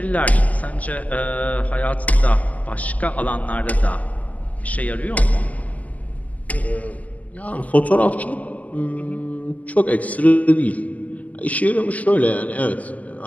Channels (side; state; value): right; late; 0.075 ms